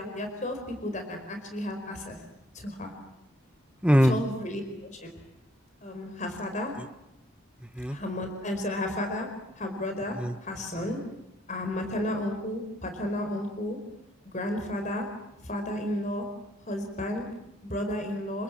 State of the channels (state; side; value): normal; both; correlation 0.68